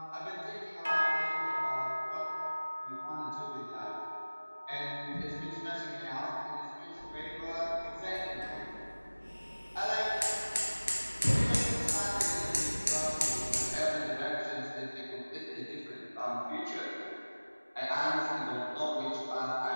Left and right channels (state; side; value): inverted; both; correlation -1.00